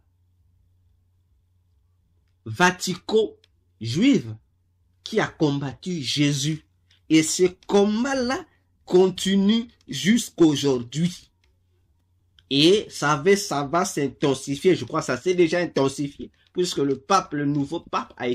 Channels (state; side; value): identical; both; correlation 1.00